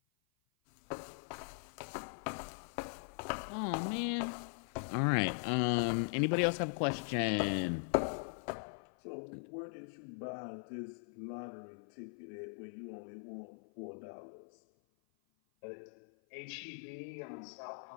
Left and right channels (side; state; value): right; silent; 51 dB below the other